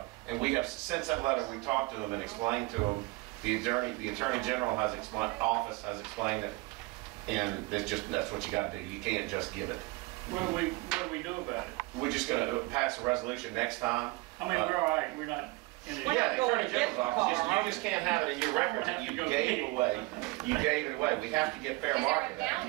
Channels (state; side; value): quieter; left; 23.6 dB